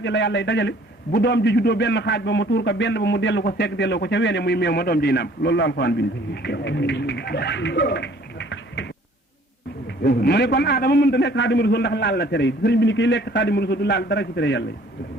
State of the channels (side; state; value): both; normal; correlation 0.56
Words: ji la yàlla dajale bu doom ji juddoo benn xaaj ba mu tuur ko benn ba mu dellu ko segg delloo ko ca weene muy meew ma doom jiy nàmp loolu la alxuraan bind mu ne kon aadama mënta nekk xaadimu rasul ndax laal la tere yi sëriñ bi ni kiy lekk xaadimu rasul du laal dara ci tere yàlla yi